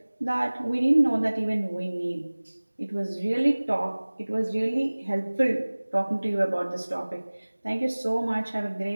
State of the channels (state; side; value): inverted; both; correlation -1.00